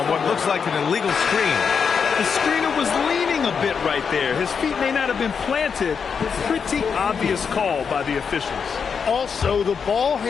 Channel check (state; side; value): quieter; right; 6.3 dB